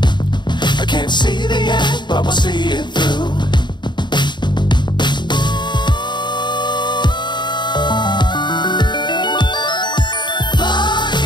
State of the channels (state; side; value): late; right; 0.22 ms